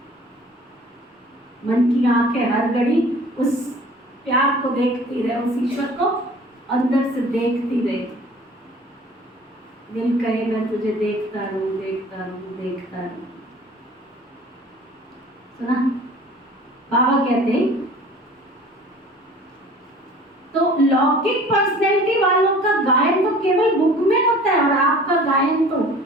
मन की आंखें हर घड़ी उस प्यार को देखती रहे, उस ईश्वर को अंदर से देखती रहे। दिल कहे मैं तुझे देखता रहूं, देखता रहूं, देखता रहूं। सुना बाबा कहते हैं तो लौकिक पर्सनैलिटी वालों का गायन तो केवल बुक में होता है और आपका गायन तो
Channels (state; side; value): normal; both; correlation 0.47